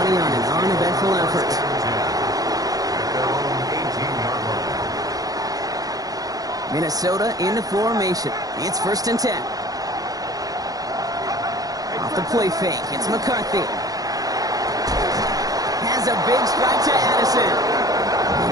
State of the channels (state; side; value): late; left; 0.18 ms